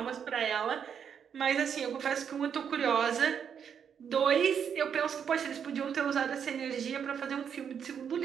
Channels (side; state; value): left; quieter; 7.6 dB